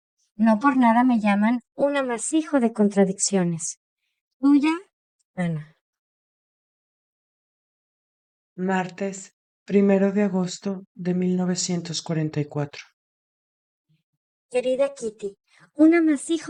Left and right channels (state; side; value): identical; both; correlation 1.00